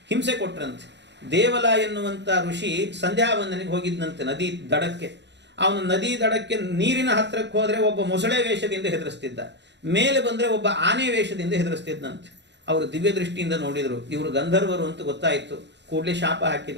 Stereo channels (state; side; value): late; left; 0.51 ms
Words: ಹಿಂಸೆ ಕೊಟ್ರಂತೆ. ದೇವಲ ಎನ್ನುವಂಥ ಋಷಿ ಸಂಧ್ಯಾವಂದನೆಗೆ ಹೋಗಿದ್ದಂತೆ ನದಿ ದಡಕ್ಕೆ. ಅವನು ನದಿ ದಡಕ್ಕೆ ನೀರಿನ ಹತ್ತಿರಕ್ಕೆ ಹೋದರೆ ಒಬ್ಬ ಮೊಸಳೆ ವೇಷದಿಂದ ಹೆದರಿಸ್ತಿದ್ದ, ಮೇಲೆ ಬಂದರೆ ಒಬ್ಬ ಆನೆ ವೇಷದಿಂದ ಹೆದರಿಸ್ತಿದ್ದಂತೆ. ಅವರು ದಿವ್ಯ ದೃಷ್ಟಿಯಿಂದ ನೋಡಿದರು, ಇವರು ಗಂಧರ್ವರು ಅಂತ ಗೊತ್ತಾಯಿತು. ಕೂಡಲೇ ಶಾಪ